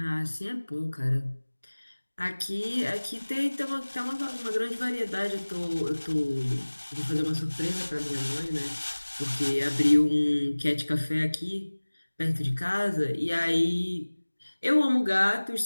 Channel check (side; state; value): both; inverted; correlation -1.00